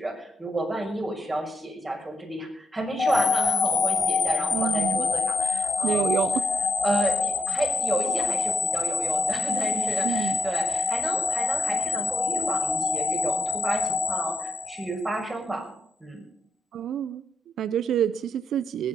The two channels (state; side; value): normal; both; correlation 0.83